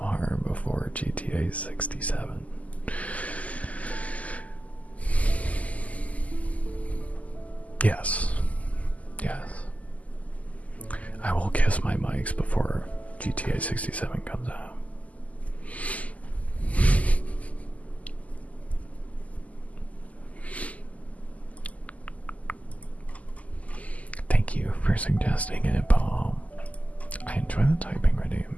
before GTA 67. Yes. Yes. I will kiss my mics before GTA 67 comes out. Thank you for suggesting it, Paul. I enjoy the typing redeem.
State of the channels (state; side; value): late; right; 0.073 ms